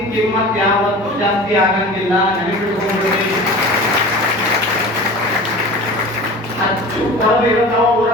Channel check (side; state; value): both; normal; correlation 0.37